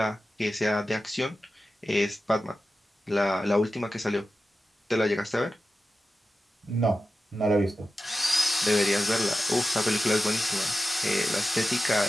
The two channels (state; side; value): normal; both; correlation 0.93